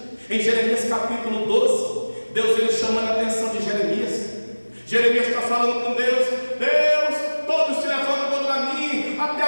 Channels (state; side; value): inverted; both; correlation -1.00